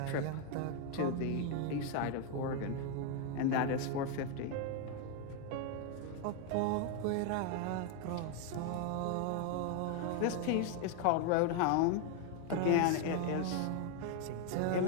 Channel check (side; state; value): both; different; correlation 0.01